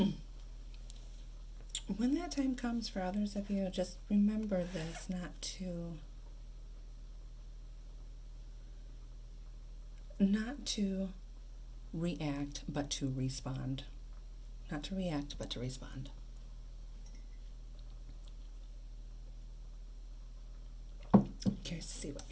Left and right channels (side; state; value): both; identical; correlation 1.00